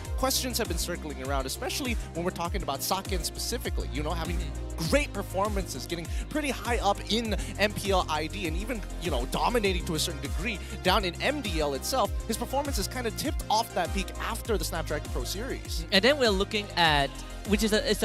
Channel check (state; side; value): identical; both; correlation 1.00